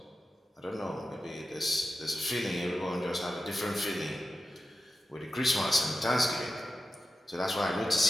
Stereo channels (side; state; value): both; normal; correlation 0.92